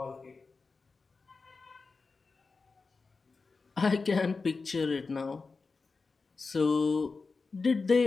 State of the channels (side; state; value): right; quieter; 4.3 dB